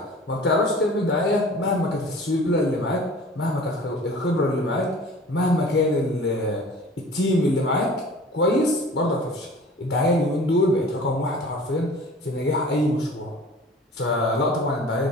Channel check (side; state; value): both; normal; correlation 0.44